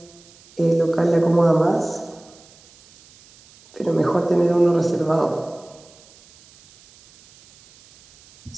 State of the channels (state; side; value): noise; right; hiss, 27 dB below the sound